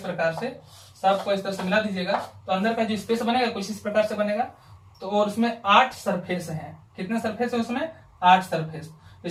प्रकार से, सबको इस तरह से मिला दीजिएगा तो अंदर का जो स्पेस बनेगा कुछ इस प्रकार से बनेगा। तो और उसमें 8 सरफेस हैं। कितने सरफेस है उसमें, 8 सरफेस।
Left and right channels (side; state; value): both; identical; correlation 1.00